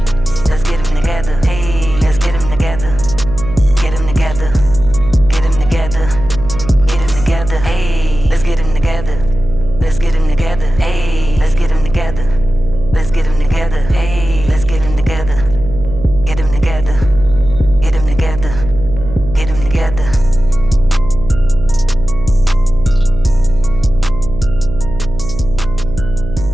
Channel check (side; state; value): right; noise; hum, 9 dB below the sound